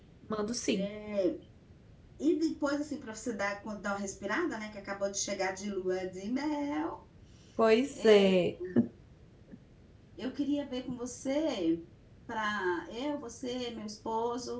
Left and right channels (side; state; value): both; identical; correlation 1.00